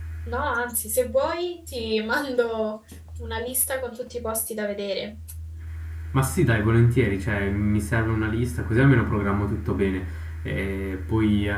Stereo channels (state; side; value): identical; both; correlation 1.00